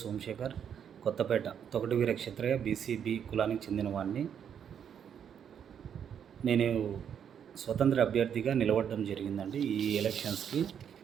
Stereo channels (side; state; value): left; quieter; 8.3 dB